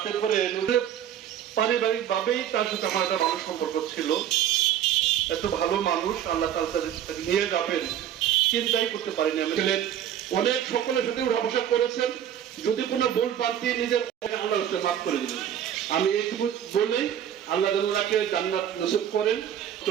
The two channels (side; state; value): left; quieter; 10.2 dB